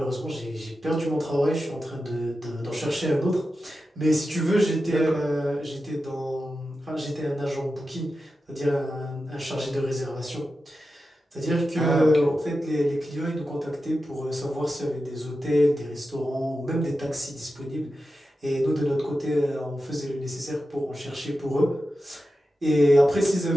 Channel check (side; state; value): both; normal; correlation 0.91